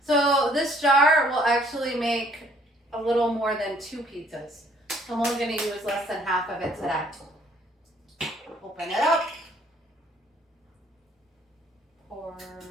So this jar will actually make a little more than 2 pizzas. So I'm only going to use less than half of it today. Open it up. Pour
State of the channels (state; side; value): normal; both; correlation 0.61